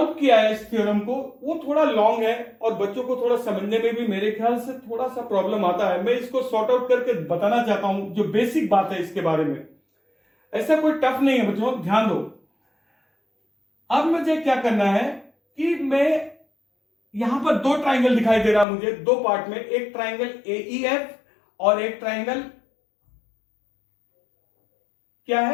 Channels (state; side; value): drops out; right; at 18.7 s